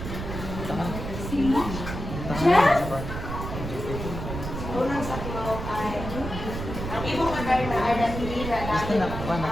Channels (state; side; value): noise; right; rumble, 6 dB below the sound